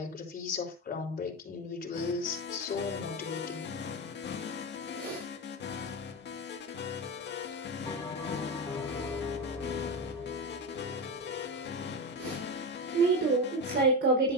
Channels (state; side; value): normal; both; correlation 0.17